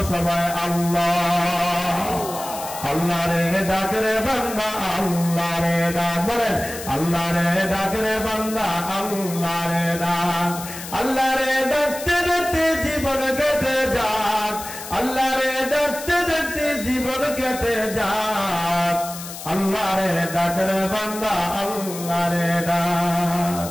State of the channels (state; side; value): noise; left; hiss, 11 dB below the sound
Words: সবাই আল্লাহ। আল্লাহ রে ডাক রে বান্দা, আল্লাহ রে ডাক, বলেন আল্লাহ রে ডাক রে বান্দা, আল্লাহ রে ডাক। আল্লাহ রে ডাকতে ডাকতে জীবন কেটে যাক, আল্লাহ রে ডাকতে ডাকতে জীবন কেটে যাক। আল্লাহ রে ডাক রে বান্দা, আল্লাহ রে ডাক।